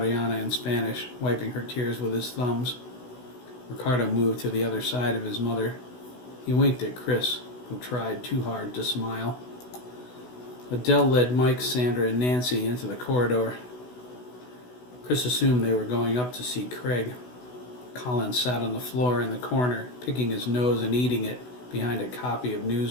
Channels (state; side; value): late; right; 16 ms